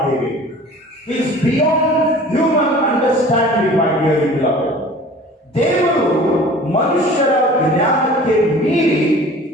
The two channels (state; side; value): normal; both; correlation 0.44